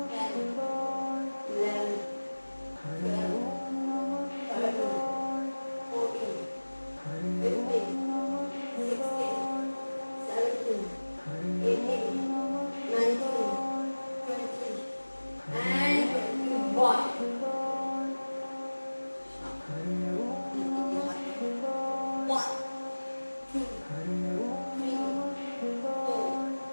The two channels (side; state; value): both; inverted; correlation -1.00